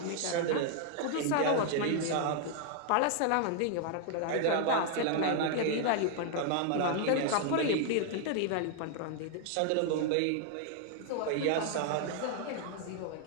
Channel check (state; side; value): different; both; correlation 0.00